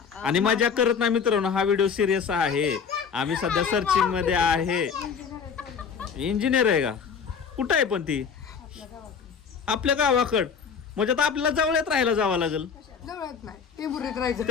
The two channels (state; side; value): quieter; right; 6.4 dB